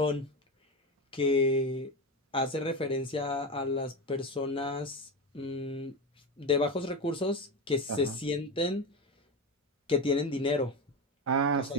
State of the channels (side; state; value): both; normal; correlation 0.19